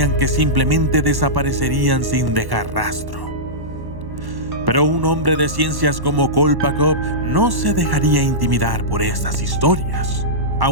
que simplemente desaparecerían sin dejar rastro. Pero un hombre de ciencias como Kolpakov no se dejaría intimidar por estas historias.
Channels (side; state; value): left; late; 1.1 ms